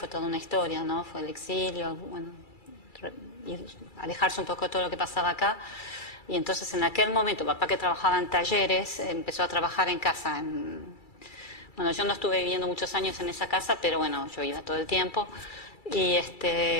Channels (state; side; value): late; right; 2.3 ms